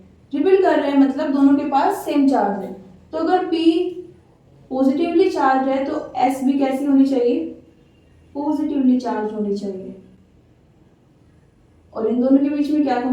रिपेल कर रहे हैं मतलब दोनों के पास सेम चार्ज है। तो अगर P पॉजिटिवली चार्ज है तो S भी कैसी होनी चाहिए, पॉजिटिवली चार्ज होनी चाहिए। और इन दोनों के बीच में क्या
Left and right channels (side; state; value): both; identical; correlation 1.00